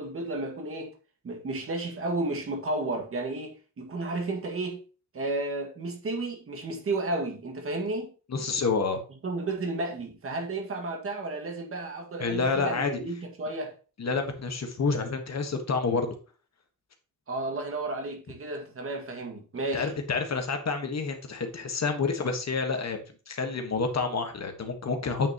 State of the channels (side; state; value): both; normal; correlation 0.05